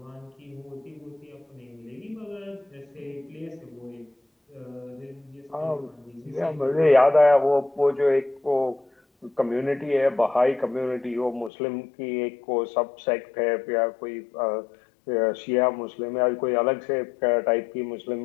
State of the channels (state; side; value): drops out; right; at 11.5 s